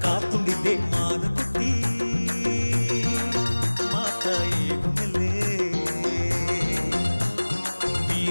ಕಾತುಂಡಿದ್ದೆ ಮಾನು ಕುಟ್ಟಿ ಮಾತ ಏಗು ಮೇಲೆ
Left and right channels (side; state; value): both; inverted; correlation -1.00